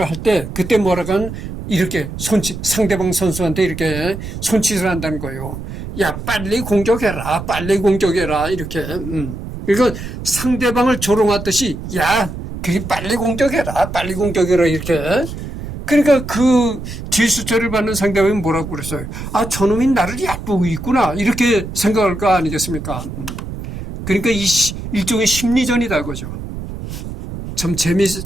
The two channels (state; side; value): noise; right; rumble, 9 dB below the sound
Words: 할 때 그때 뭐라고 하면 이렇게 상대방 선수한테 이렇게 손짓을 한다는 거예요. 야, 빨리 공격해라. 빨리 공격해라. 이렇게. 그러니까 상대방을 조롱하듯이 야, 그게 빨리 공격해라. 빨리 공격해라. 이렇게. 그러니까 그 뒷수처를 받는 상대방이 뭐라고 그랬어요? 아, 저놈이 나를 얕보고 있구나. 이렇게 생각할 거 아니겠습니까? 그러니까 이 일종의 심리전이다 그죠. 참